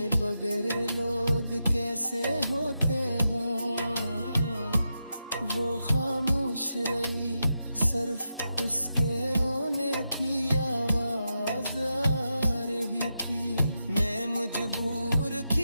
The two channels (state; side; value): inverted; both; correlation -0.87